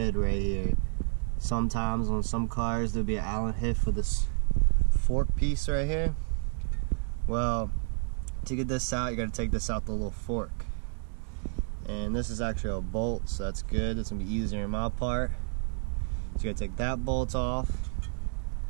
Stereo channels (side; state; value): left; silent; 58 dB below the other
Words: right here. Sometimes on some cars there'll be an Allen head for this fork piece right here. Well, to get this out, you gotta take this out the little fork. And this is actually a bolt, so that's good. It's gonna be easier in my part. So you gotta take that bolt off.